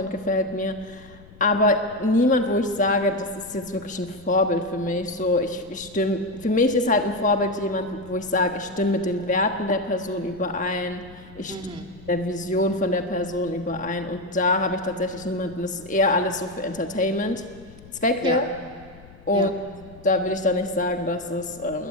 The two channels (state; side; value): noise; left; rumble, 21 dB below the sound